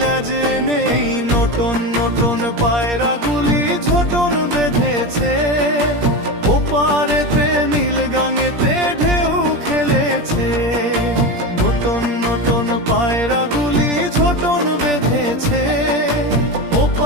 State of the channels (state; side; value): late; left; 17 ms